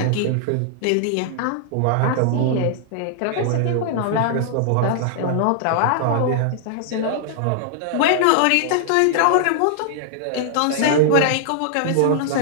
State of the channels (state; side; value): different; both; correlation -0.01